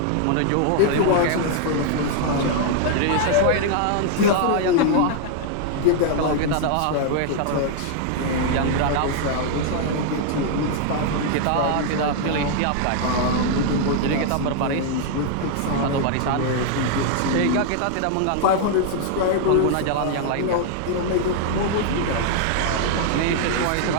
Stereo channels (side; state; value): both; different; correlation -0.01